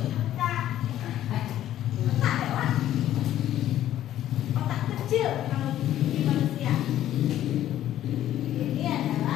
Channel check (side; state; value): right; quieter; 12.4 dB